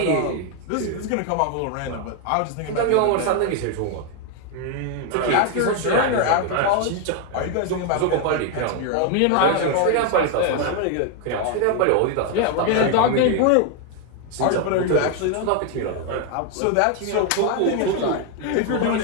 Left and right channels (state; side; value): different; both; correlation 0.01